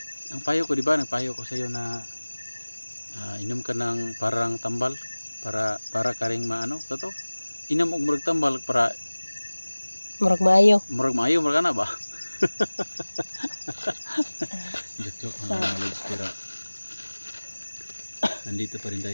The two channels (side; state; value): both; inverted; correlation -1.00